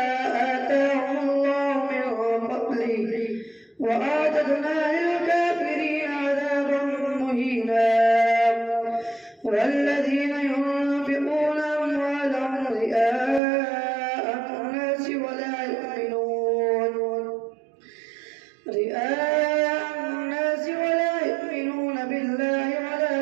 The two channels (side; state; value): left; drops out; at 13.4 s